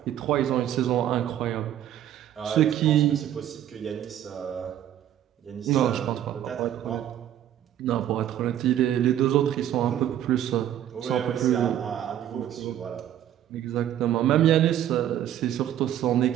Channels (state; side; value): quieter; left; 11.2 dB